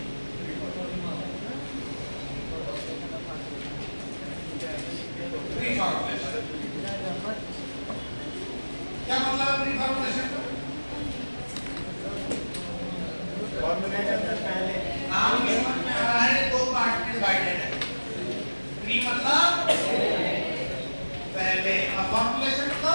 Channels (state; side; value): inverted; both; correlation -1.00